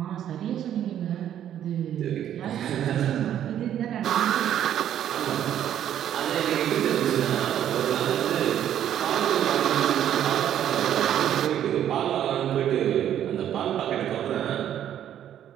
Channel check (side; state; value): left; quieter; 10.6 dB